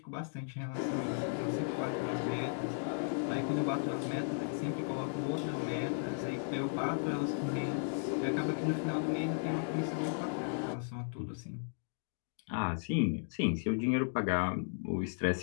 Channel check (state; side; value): silent; right; digital silence